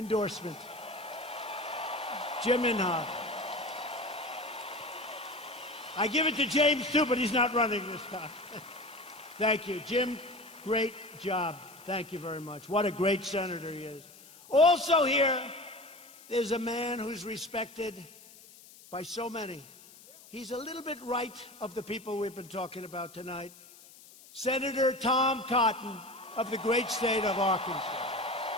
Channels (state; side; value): noise; left; hiss, 21 dB below the sound